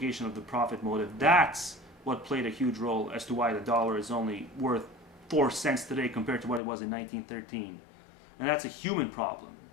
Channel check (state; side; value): drops out; right; at 6.6 s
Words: of the profit motive, that's what played a huge role as to why the dollar is only worth 4 cents today compared to what it was in 1913. And that's a human problem.